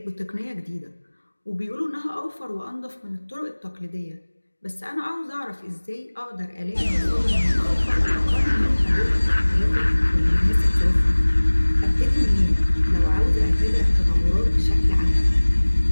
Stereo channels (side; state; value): both; inverted; correlation -1.00